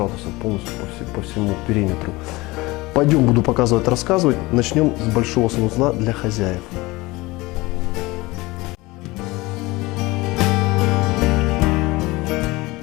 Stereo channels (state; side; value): quieter; right; 21.6 dB